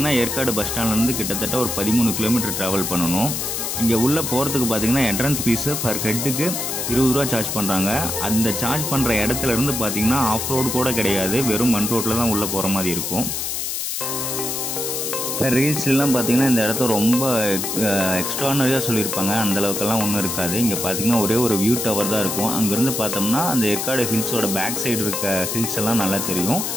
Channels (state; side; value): noise; left; hiss, 2 dB below the sound